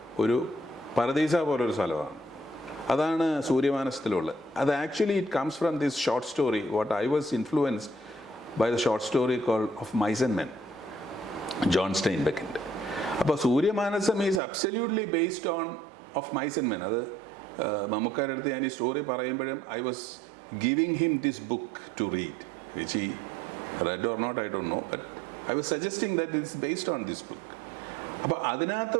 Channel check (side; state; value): left; drops out; at 14.4 s